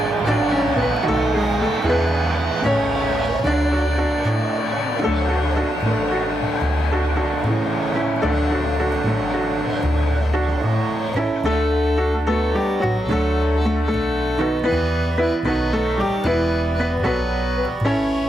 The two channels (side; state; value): both; normal; correlation 0.85